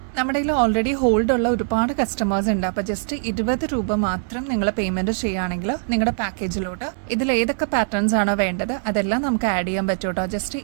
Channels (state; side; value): silent; left; 64 dB below the other